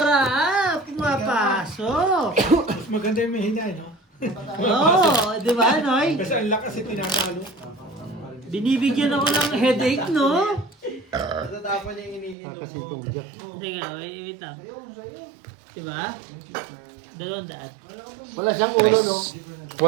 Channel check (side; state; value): left; drops out; at 12.4 s